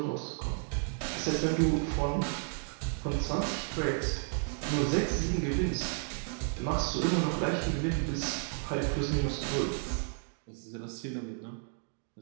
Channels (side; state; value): left; silent; 56 dB below the other